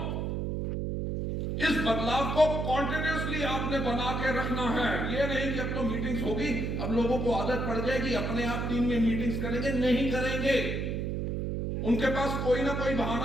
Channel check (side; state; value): right; noise; hum, 1 dB below the sound